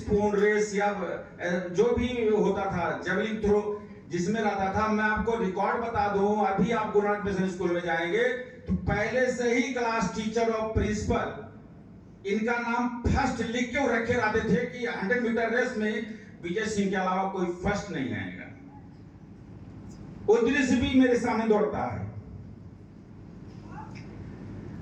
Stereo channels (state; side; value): identical; both; correlation 1.00